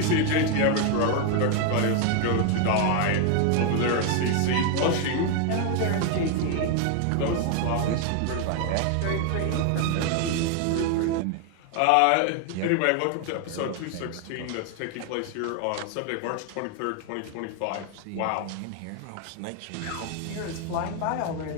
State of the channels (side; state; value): both; different; correlation 0.01